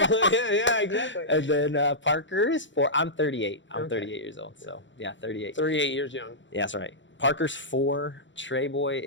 exactly. And then Parker is 4. I'm 38. I'm 38 years old, so yeah, 38. 38 years young. Yeah, that's right. Parker's 4, Trey Boy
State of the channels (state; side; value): late; right; 0.54 ms